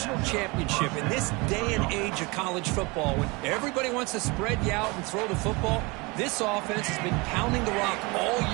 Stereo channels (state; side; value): quieter; left; 26.3 dB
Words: championship in this day and age of college football when everybody wants to spread you out and throw the football. This offense has been pounding the rock all